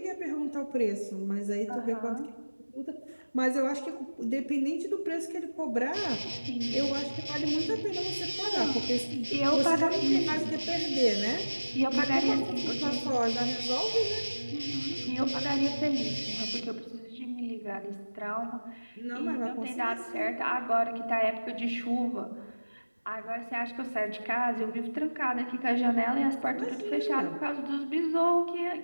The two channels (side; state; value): both; inverted; correlation -1.00